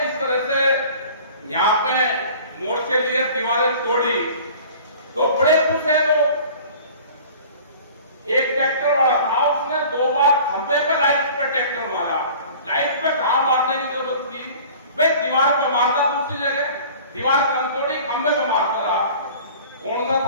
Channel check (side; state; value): both; inverted; correlation -0.45